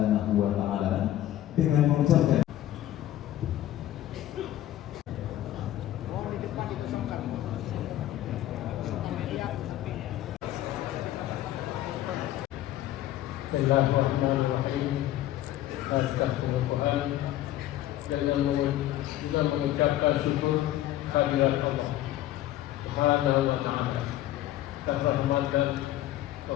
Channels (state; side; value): quieter; right; 13.7 dB